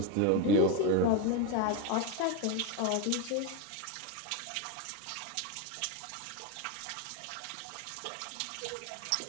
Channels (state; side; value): different; both; correlation 0.03